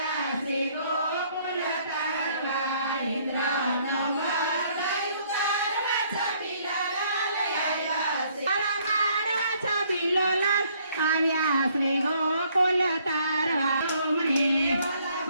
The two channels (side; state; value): both; inverted; correlation -0.65